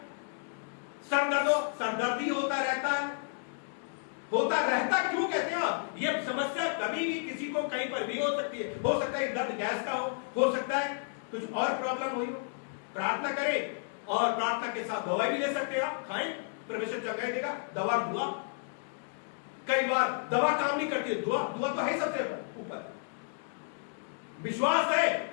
सर दर्द हो, सर दर्द ही होता रहता है, होता रहता क्यों कहते हैं आप? ये समस्या कभी भी किसी को कहीं पर भी हो सकती है। हो सकता है दर्द गैस का हो सकता है कुछ और प्रॉब्लम हुई हो। प्रार्थना करें और प्रार्थना के साथ दवाई भी ले सकते हैं, आप खाएं, परमेश्वर चंगाई देगा। दवा दुआ, कई बार दवा काम नहीं करती है, दुआ तो है सबसे ऊपर। विश्वास है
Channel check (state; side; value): silent; right; digital silence